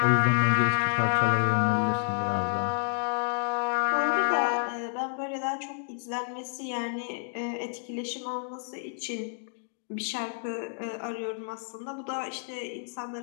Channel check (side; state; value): right; silent; digital silence